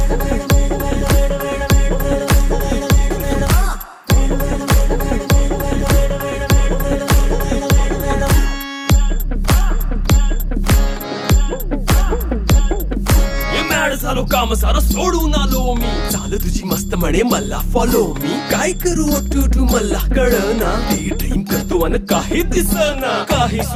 झालो काम सारं सोडून आलो मी चाल तुझी मस्त म्हणे मला फॉलो मी काय करू टू मला कळना ती ड्रीम करतो आणि काही दिसना काही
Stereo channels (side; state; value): both; identical; correlation 1.00